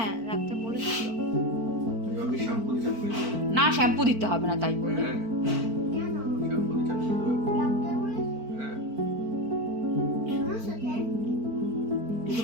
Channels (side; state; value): left; late; 4.4 ms